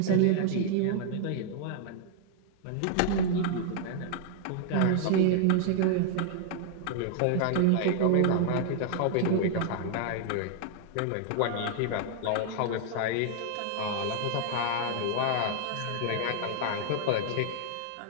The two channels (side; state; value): both; different; correlation -0.01